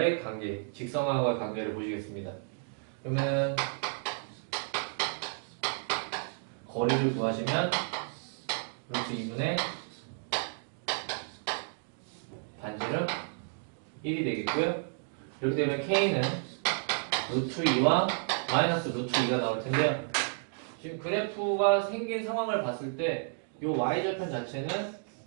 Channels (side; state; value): left; silent; 57 dB below the other